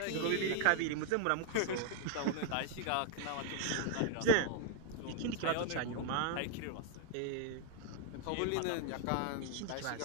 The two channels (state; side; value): different; both; correlation 0.00